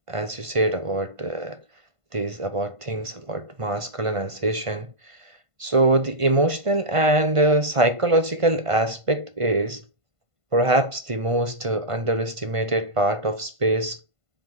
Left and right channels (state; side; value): late; left; 1.5 ms